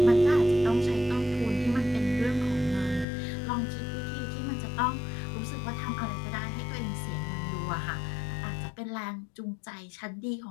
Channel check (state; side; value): drops out; right; at 3.1 s